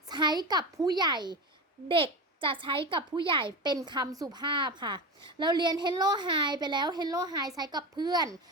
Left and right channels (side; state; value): both; normal; correlation 0.23